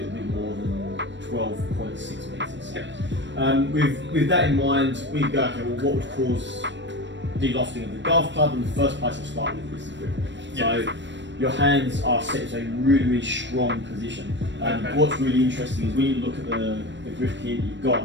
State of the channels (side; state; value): left; late; 0.53 ms